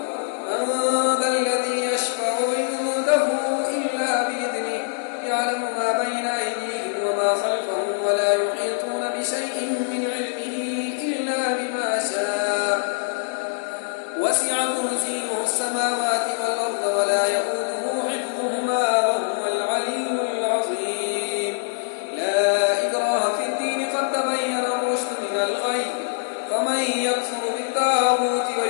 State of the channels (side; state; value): right; silent; 63 dB below the other